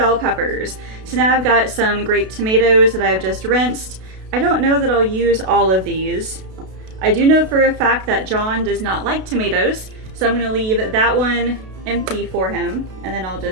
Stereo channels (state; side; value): late; left; 32 ms